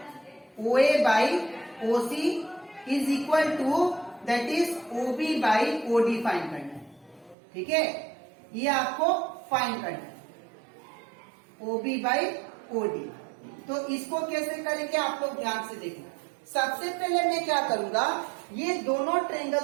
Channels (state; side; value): drops out; left; at 7.4 s